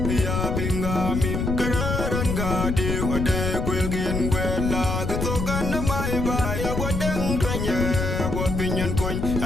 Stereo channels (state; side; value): noise; left; rumble, 1 dB below the sound